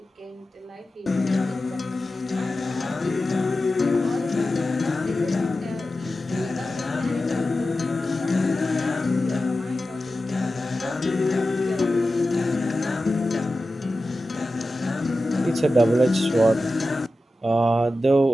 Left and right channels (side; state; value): both; normal; correlation 0.93